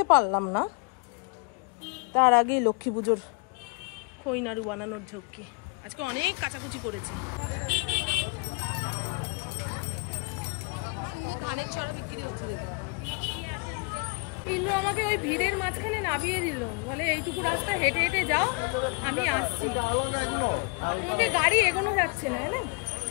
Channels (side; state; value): right; quieter; 32.7 dB